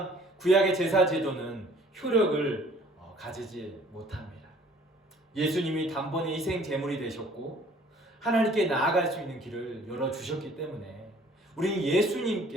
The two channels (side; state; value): both; normal; correlation 0.54